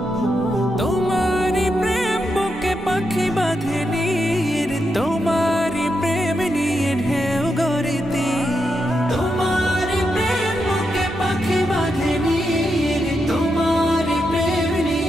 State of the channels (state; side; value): noise; right; hum, 18 dB below the sound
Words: তোমারি প্রেম বুকে পাখি বাঁধে নীর, তোমারি প্রেম নিয়ে ঢেউ গড়িতে। তোমারি প্রেম বুকে পাখি বাঁধে নীর, তোমারি প্রেম